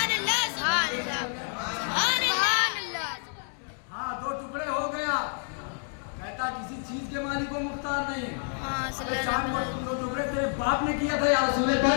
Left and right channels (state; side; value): silent; right; 57 dB below the other